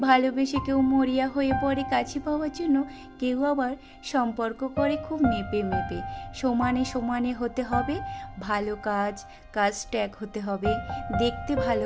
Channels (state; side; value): identical; both; correlation 1.00